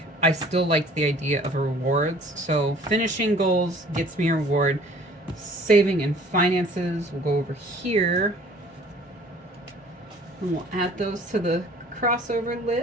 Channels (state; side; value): normal; both; correlation 0.52